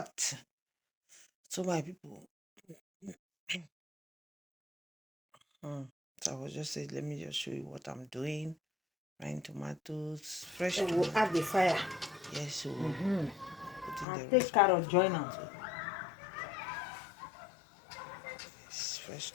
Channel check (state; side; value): drops out; right; at 14.1 s